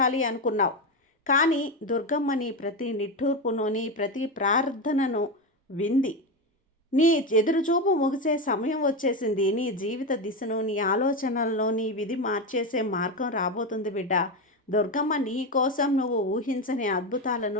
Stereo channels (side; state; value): both; normal; correlation 0.14